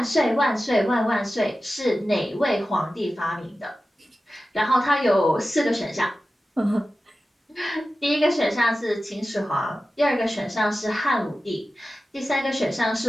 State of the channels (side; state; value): both; normal; correlation 0.94